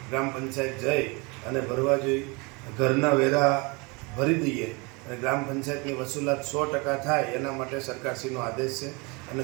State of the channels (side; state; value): left; quieter; 28.3 dB